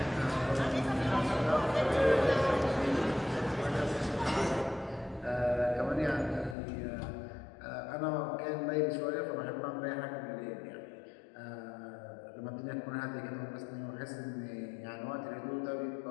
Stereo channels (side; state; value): right; drops out; at 6.6 s